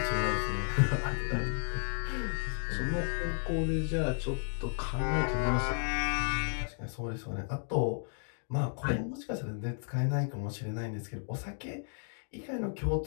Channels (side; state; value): right; silent; digital silence